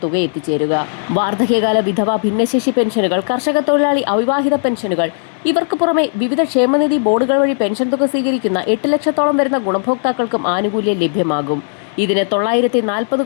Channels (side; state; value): right; silent; digital silence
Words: തുക എത്തിച്ചേരുക. വാർദ്ധക്യകാല വിധവ ഭിന്നശേഷി പെൻഷനുകൾ, കർഷക തൊഴിലാളി അവിവാഹിത പെൻഷനുകൾ, ഇവർക്ക് പുറമെ വിവിധ ക്ഷേമനിധി ബോർഡുകൾ വഴി പെൻഷൻ തുക സ്വീകരിക്കുന്ന 8 ലക്ഷത്തോളം വരുന്ന ഗുണഭോക്താക്കൾക്കും ആനുകൂല്യം ലഭ്യമാകും. ഇതിന് 940